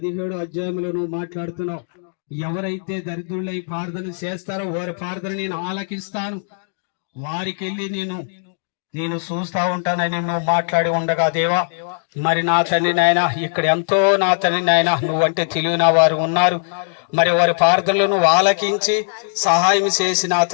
అధ్యాయంలో నువ్వు మాట్లాడుతున్నావు. ఎవరైతే దరిద్రులై ప్రార్థన చేస్తారో వారి ప్రార్థన నేను ఆలకిస్తాను, వారికి వెళ్ళి నేను చూస్తా ఉంటానని నువ్వు మాట్లాడి ఉండగా దేవా మరి నా తండ్రి నాయన ఇక్కడ ఎంతో నా తండ్రి నాయన నువ్వంటే తెలియని వారు ఉన్నారు. మరి వారి ప్రార్థనలు నువ్వు ఆలకించి సహాయం చేసి నా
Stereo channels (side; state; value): right; silent; digital silence